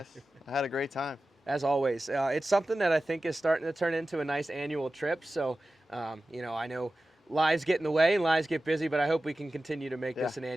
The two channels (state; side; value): normal; both; correlation 0.95